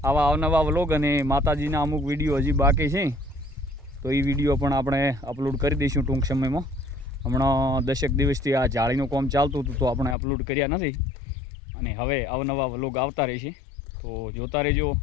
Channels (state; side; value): drops out; right; at 10.2 s